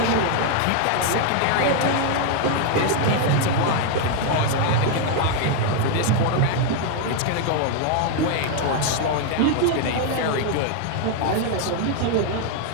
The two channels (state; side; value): different; both; correlation 0.00